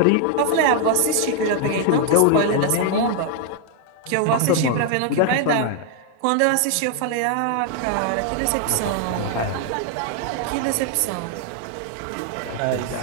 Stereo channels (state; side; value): different; both; correlation 0.00